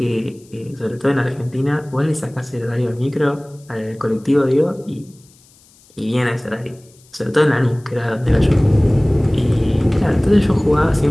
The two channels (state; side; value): noise; left; hiss, 29 dB below the sound